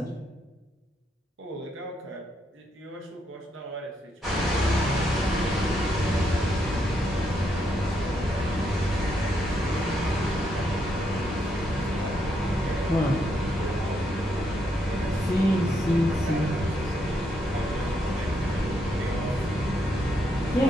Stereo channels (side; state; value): both; normal; correlation 0.78